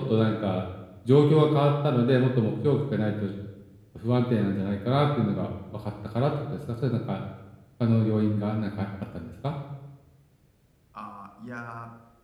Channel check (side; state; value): both; identical; correlation 1.00